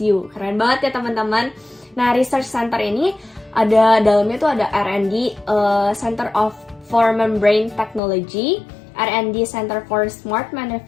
Keren banget ya teman-teman. Nah, research center ini ada dalamnya tuh ada R&D, Center for Membrane Technology, R&D Center for Smart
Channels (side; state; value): right; drops out; at 8.0 s